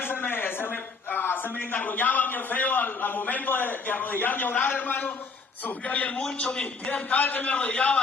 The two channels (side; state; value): right; quieter; 4.5 dB